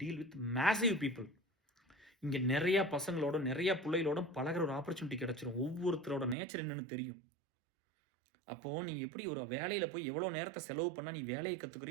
deal with massive people. இங்கே நிறையா பசங்களோட, நிறையா பிள்ளைகளோட பழகிற ஒரு ஆப்பர்ச்சுனிட்டி கிடச்சிரும். ஒவ்வொருத்தரோட நேச்சர் என்னென்னு தெரியும். அப்போது நீ எப்படி ஒரு வேலையில் போய் எவ்வளோ நேரத்தை செலவு பண்ணால் நீ வேலையை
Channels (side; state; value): left; drops out; at 6.4 s